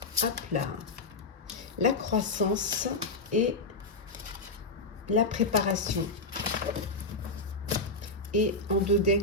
Hop là, la croissance et la préparation. Et en deux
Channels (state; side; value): quieter; right; 3.3 dB